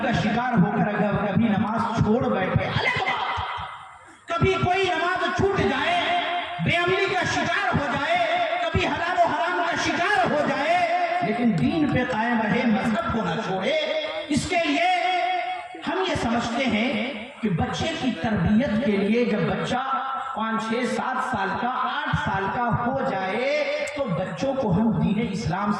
کا شکار ہو کر اگر کبھی نماز چھوڑ بیٹھے، کبھی کوئی نماز چھوٹ جائے، بے عملی کا شکار ہو جائے، کبھی حلال و حرام کا شکار ہو جائے، لیکن دین پہ قائم رہے، مذہب کو نہ چھوڑے. اس کے لیے ہم یہ سمجھتے ہیں کہ بچے کی تربیت کے لیے جب بچہ 5 6 7 سال کا 8 سال کا ہو جائے تو بچوں کو ہم دین اسلام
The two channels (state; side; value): identical; both; correlation 1.00